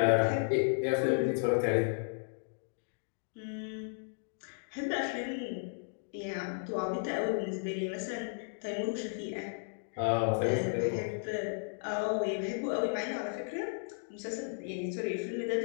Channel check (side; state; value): right; silent; digital silence